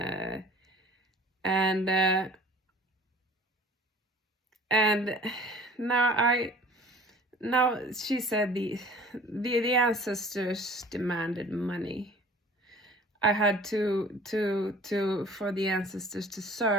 and now she said the ancestors demanded money. I had to for the ancestors to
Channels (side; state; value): both; normal; correlation 0.47